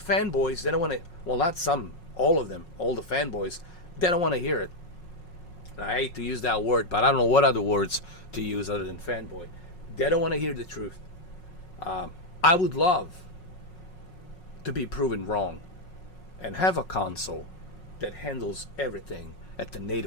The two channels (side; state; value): right; late; 5.5 ms